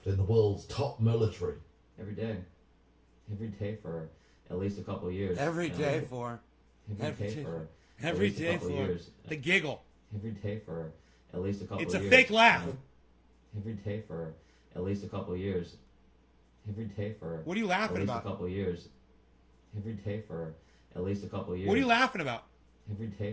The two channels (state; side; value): identical; both; correlation 1.00